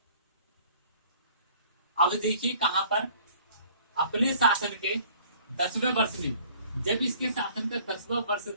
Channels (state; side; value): inverted; both; correlation -0.54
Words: अब देखिए कहां पर, अपने शासन के 10वें वर्ष में, जब इसके शासन का 10वां वर्ष